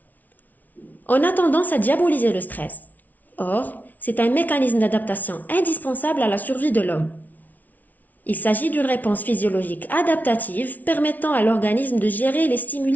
On a tendance à diaboliser le stress. Or, c'est un mécanisme d'adaptation indispensable à la survie de l'homme. Il s'agit d'une réponse physiologique adaptative permettant à l'organisme de gérer les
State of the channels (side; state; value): right; late; 0.078 ms